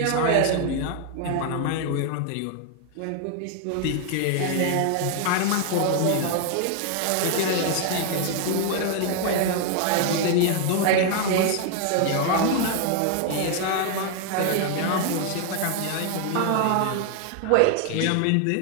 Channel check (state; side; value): different; both; correlation 0.00